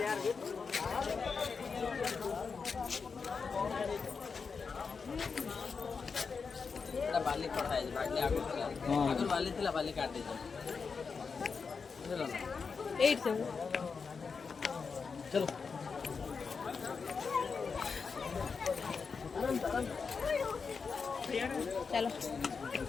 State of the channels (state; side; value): quieter; right; 5.3 dB